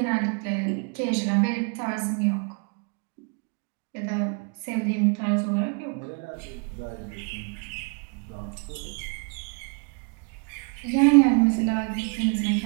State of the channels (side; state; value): left; quieter; 37.1 dB